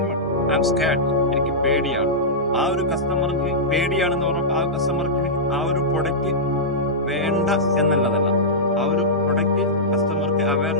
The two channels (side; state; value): both; normal; correlation -0.12